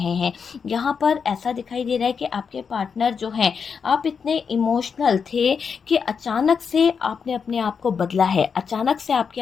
हैं। यहाँ पर ऐसा दिखाई दे रहा है कि आपके पार्टनर जो हैं, आप इतने इमोशनल थे कि अचानक से आपने अपने आप को बदला है। अचानक से आपके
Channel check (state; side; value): quieter; right; 6.1 dB